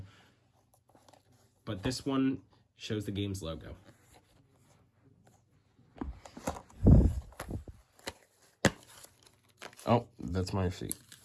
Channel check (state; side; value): identical; both; correlation 1.00